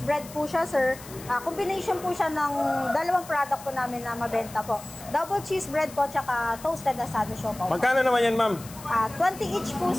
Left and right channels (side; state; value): left; noise; hiss, 17 dB below the sound